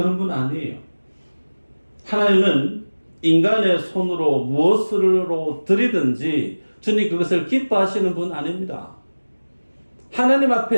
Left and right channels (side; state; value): both; inverted; correlation -1.00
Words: 분 아니에요. 하나님은 인간의 손으로 무엇으로 드리든지 주님 그것을 기뻐하시는 분 아닙니다. 하나님